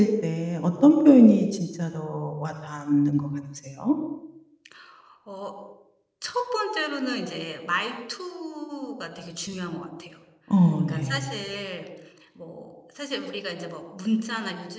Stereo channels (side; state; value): both; identical; correlation 1.00